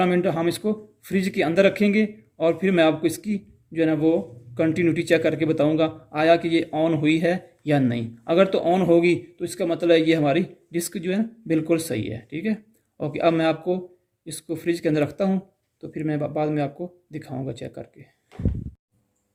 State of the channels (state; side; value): identical; both; correlation 1.00